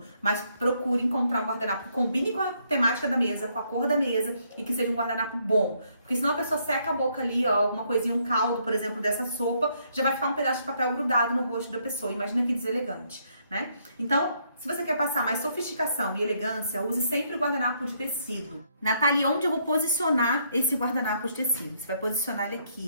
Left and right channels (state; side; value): inverted; both; correlation -0.72